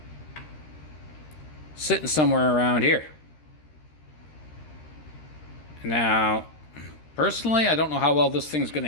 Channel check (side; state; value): right; late; 13 ms